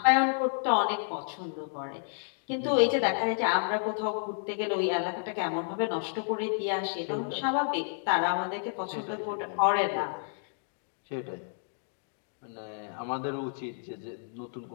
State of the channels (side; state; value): right; silent; digital silence